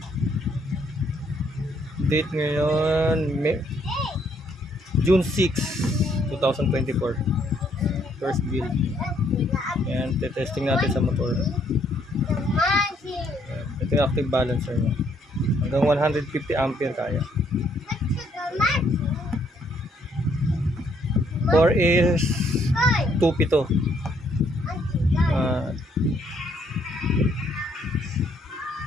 Date ngayon June 6, 2024. First build. Ayan, testing natin sa motor. Ayan. Ito yung active balancer niya. Hanggang 150 ampere kaya. 4 is 2P to.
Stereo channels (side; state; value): both; normal; correlation 0.69